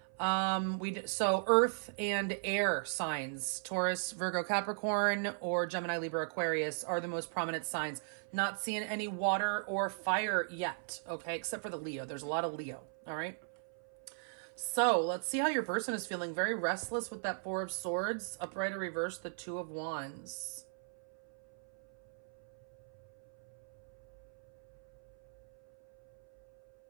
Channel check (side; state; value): left; silent; 53 dB below the other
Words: So earth and air signs, Taurus, Virgo, Capricorn, or Gemini, Libra, Aquarius are the most prominent signs. Not seeing any water or fire yet. Okay. Except for the Leo. There's a lot of Leo. All right. So let's see how your person is feeling. Very restless with that Four of Swords. Upright or reverse, the Two of Wands.